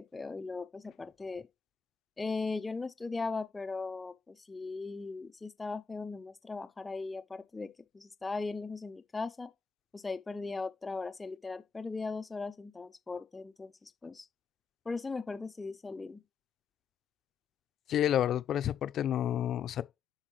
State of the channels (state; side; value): quieter; right; 6.3 dB